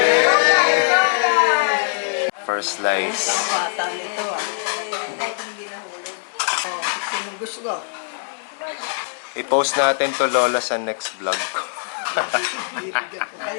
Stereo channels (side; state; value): right; silent; digital silence